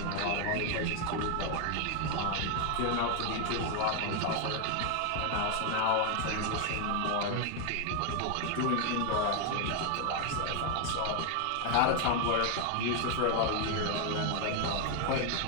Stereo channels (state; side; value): different; both; correlation 0.01